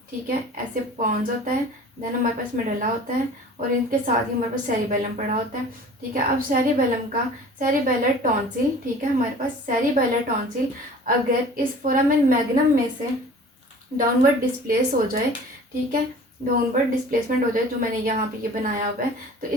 ठीक है, ऐसे पॉन्स होता है, देन हमारे पास मेडल्ला होता है, और इनके साथ ही हमारे पास सेरिबेलम पड़ा होता है। ठीक है, अब सेरिबेलम का सेरिबेलर टॉन्सिल, ठीक है, हमारे पास सेरिबेलर टॉन्सिल अगर इस फोरामेन मैग्नम में से डाउनवर्ड डिस्प्लेस हो जाए, ठीक है, डाउनवर्ड डिस्प्लेसमेंट हो जाए, जो मैंने यहाँ पे ये बनाया हुआ है, तो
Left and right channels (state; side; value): normal; both; correlation 0.44